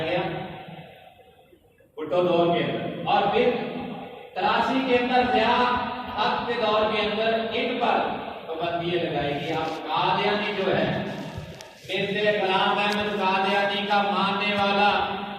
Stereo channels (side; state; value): both; identical; correlation 1.00